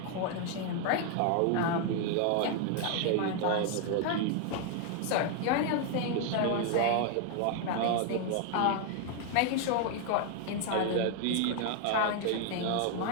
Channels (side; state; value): both; different; correlation 0.00